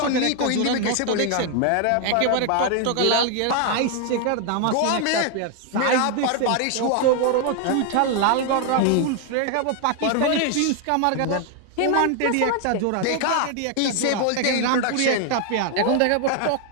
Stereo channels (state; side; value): different; both; correlation 0.00